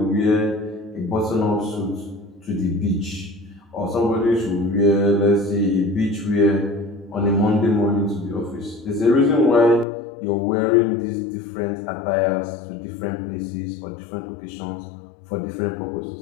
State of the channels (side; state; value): right; drops out; at 9.9 s